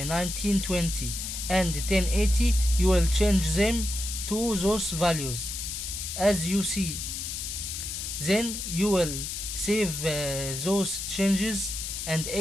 and 1080. You will change them to those values as you see. Then you will save those changes and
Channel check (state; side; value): noise; left; hiss, 5 dB below the sound